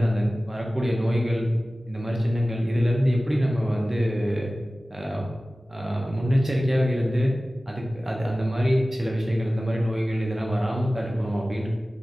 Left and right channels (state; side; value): normal; both; correlation 0.97